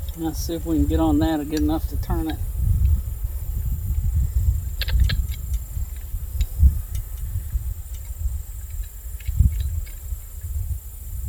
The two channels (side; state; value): both; identical; correlation 1.00